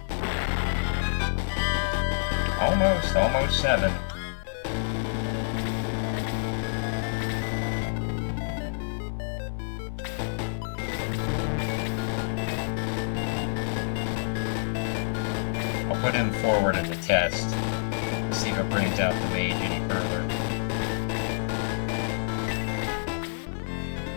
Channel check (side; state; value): right; silent; 59 dB below the other